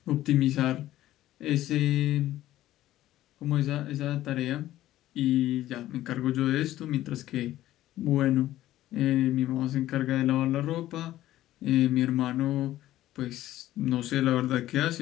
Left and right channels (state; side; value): quieter; right; 14.3 dB